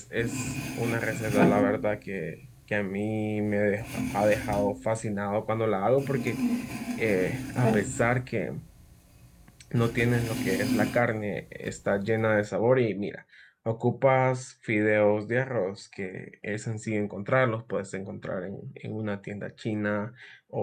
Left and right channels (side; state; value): both; identical; correlation 1.00